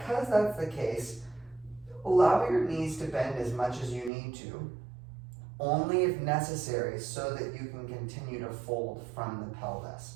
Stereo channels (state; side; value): drops out; left; at 4.1 s